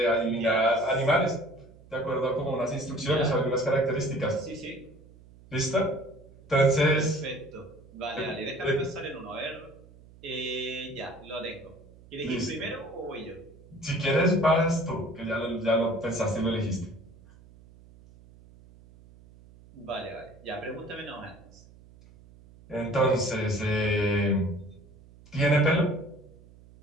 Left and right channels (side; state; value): right; noise; hum, 23 dB below the sound